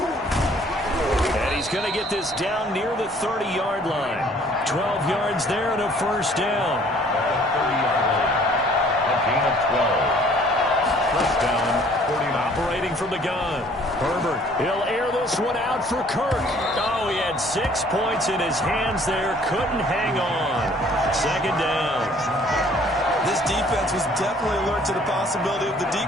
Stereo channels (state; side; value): normal; both; correlation 0.57